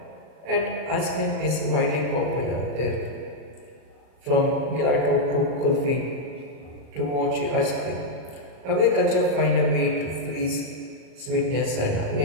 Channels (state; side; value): late; left; 38 ms